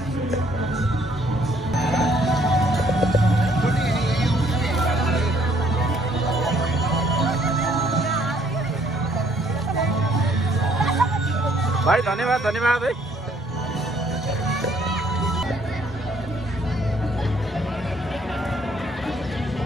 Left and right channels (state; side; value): normal; both; correlation 0.64